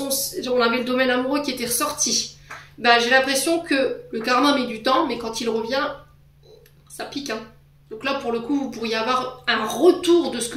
on avait le domaine amoureux qui était ressorti, ben, j'ai l'impression que le karma met du temps, mais quand il revient, ça pique. Hein. Donc là, pour le coup, vous pourriez avoir un retour de ce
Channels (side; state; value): both; identical; correlation 1.00